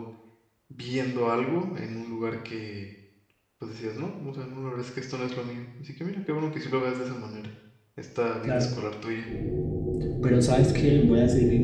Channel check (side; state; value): both; identical; correlation 1.00